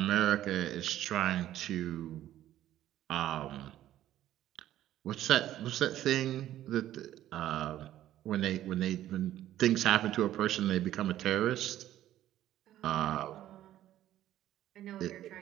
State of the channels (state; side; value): quieter; left; 12.9 dB